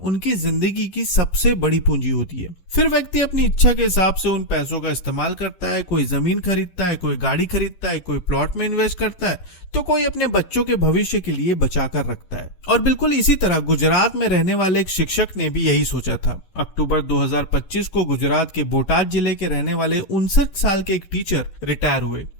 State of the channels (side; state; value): right; late; 11 ms